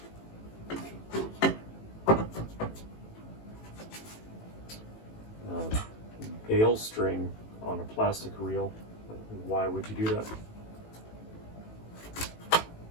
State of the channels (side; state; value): right; late; 18 ms